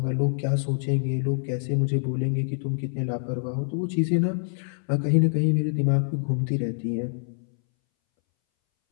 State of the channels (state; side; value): silent; right; 61 dB below the other